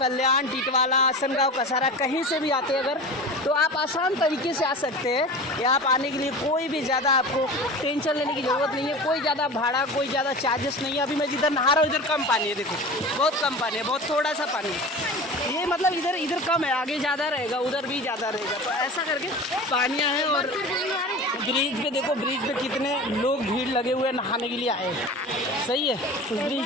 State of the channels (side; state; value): both; normal; correlation 0.34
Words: टिटवाला, आसनगांव, कसारा कहीं से भी आते हैं अगर, तो आप आसान तरीके से आ सकते हैं। यहाँ आप आने के लिए कोई भी ज़्यादा आपको टेंशन लेने की ज़रूरत नहीं है, कोई ज़्यादा भाड़ा, कोई ज़्यादा चार्जेस नहीं है। अभी मैं जिधर नहा रहा हूँ इधर कम पानी है, देखो बहुत कम पानी है, बहुत थोड़ा सा पानी है। ये मतलब इधर कम है, आगे ज़्यादा रहेगा, उधर भी ज़्यादा रहेगा। तो ऐसा करके पानियाँ हैं। और ब्रिज पे देखो, ब्रिज पे कितने लोग भीड़ लगे हुए नहाने के लिए आए। सही है। उस ब्रिज